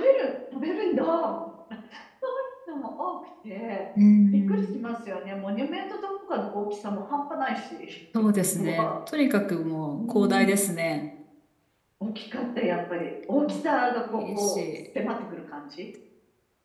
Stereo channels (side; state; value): both; identical; correlation 1.00